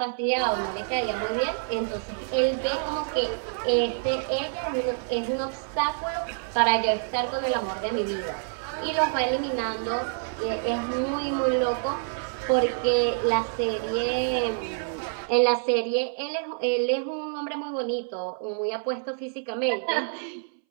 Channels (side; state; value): left; silent; 60 dB below the other